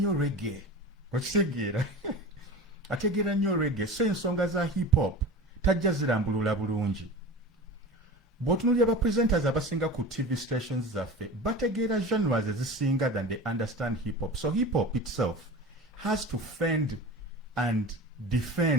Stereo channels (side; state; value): both; normal; correlation 0.33